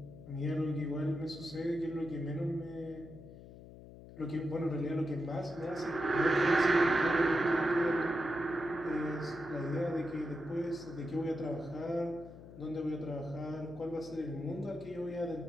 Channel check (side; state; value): left; noise; hum, 16 dB below the sound